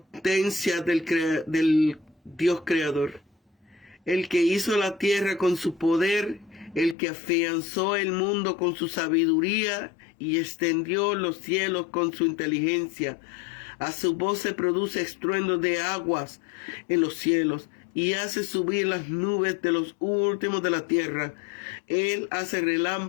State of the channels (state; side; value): drops out; right; at 7.0 s